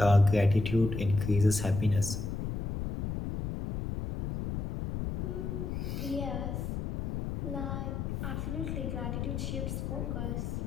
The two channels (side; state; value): left; noise; rumble, 4 dB below the sound